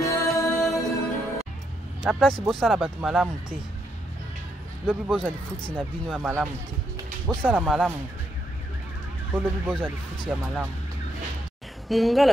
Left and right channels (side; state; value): both; normal; correlation 0.77